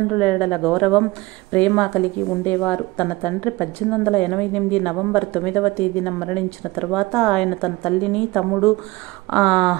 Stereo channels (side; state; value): left; quieter; 20.9 dB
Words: ఎడల గౌరవం, ప్రేమ కలిగి ఉండేవారు. తన తండ్రి 1888 నవంబర్ 9వ తేదీన మరణించిన తర్వాత ఆయన తన తల్లిని, తమ్ముడు